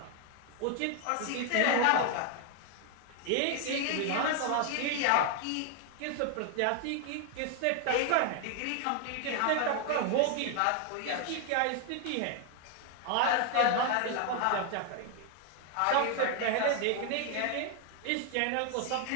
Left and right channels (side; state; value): both; different; correlation 0.00